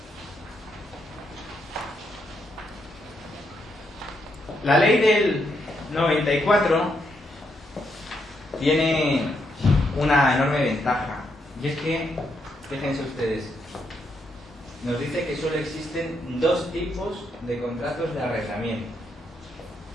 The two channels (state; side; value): normal; both; correlation 0.78